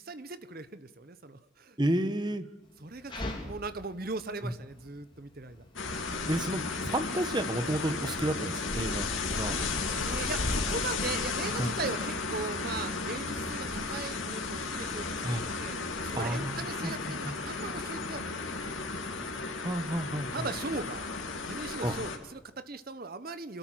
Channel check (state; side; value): normal; both; correlation 0.47